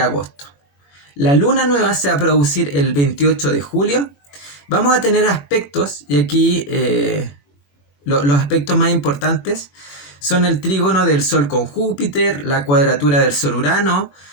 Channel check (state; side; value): late; right; 21 ms